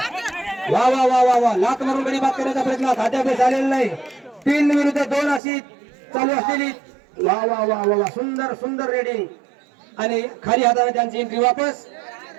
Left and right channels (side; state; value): left; drops out; at 5.4 s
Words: वा वा वा वा वा. लात मारून गडी बाद करण्याचा प्रयत्न अद्याप झालेला नाही. 3 विरुद्ध 2 अशी चालू असलेली. वा वा वा वा वा सुंदर सुंदर रेडिंग. आणि खाली हाताने त्यांची एंट्री वापस.